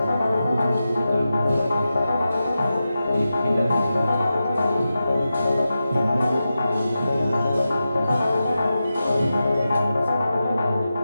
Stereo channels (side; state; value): both; inverted; correlation -0.92